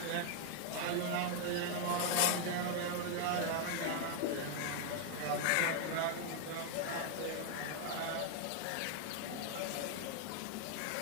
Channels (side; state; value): both; different; correlation 0.00